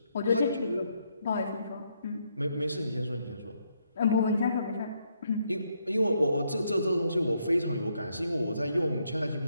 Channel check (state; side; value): inverted; both; correlation -0.75